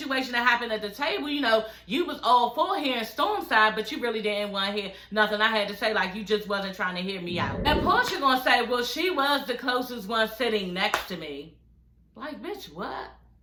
that happened at the table, you know, you was all for hearing Storm's side, but you really didn't want to hear nothing I had to say, like you just wasn't trying to hear me out. And Porsha gonna say, well, she was the closest one sitting next to me. Like, bitch, what?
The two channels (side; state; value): both; identical; correlation 1.00